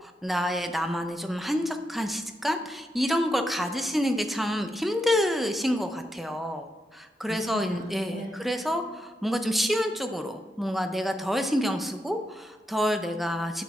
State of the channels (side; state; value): both; normal; correlation 0.84